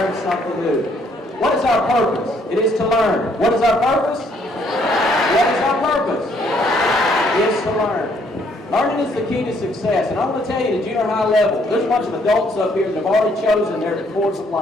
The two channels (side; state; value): both; normal; correlation 0.67